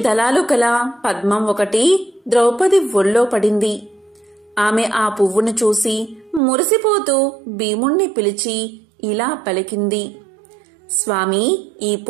దళాలు కల పద్మం ఒకటి ద్రౌపది ఒళ్ళో పడింది. ఆమె ఆ పువ్వును చూసి మురిసిపోతూ భీముణ్ణి పిలిచి ఇలా పలికింది: స్వామి, ఈ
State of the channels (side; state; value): left; drops out; at 6.4 s